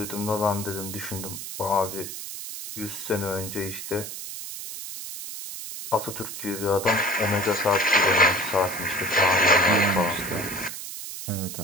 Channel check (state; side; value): noise; right; hiss, 9 dB below the sound